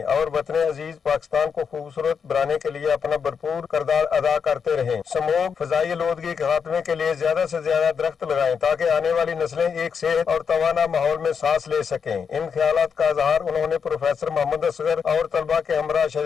اور وطن عزیز پاکستان کو خوبصورت بنانے کے لیے اپنا بھرپور کردار ادا کرتے رہیں. سموگ, فضائی آلودگی کے خاتمے کے لیے زیادہ سے زیادہ درخت لگائیں تاکہ آنے والی نسلیں ایک صحت اور توانا ماحول میں سانس لے سکیں. ان خیالات کا اظہار انہوں نے پروفیسر محمد اصغر اور طلبہ کے ہمراہ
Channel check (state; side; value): quieter; right; 6.4 dB